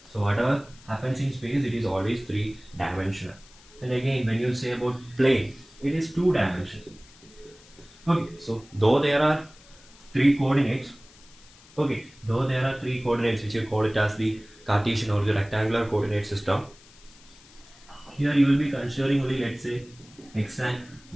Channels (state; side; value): noise; left; hiss, 25 dB below the sound